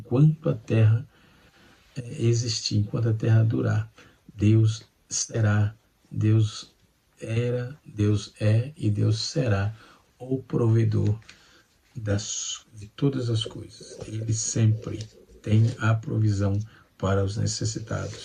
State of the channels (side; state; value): both; identical; correlation 1.00